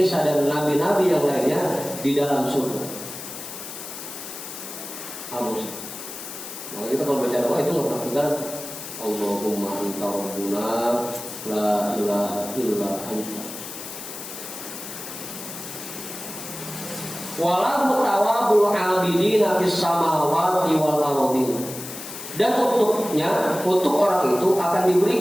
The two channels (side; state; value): left; noise; hiss, 10 dB below the sound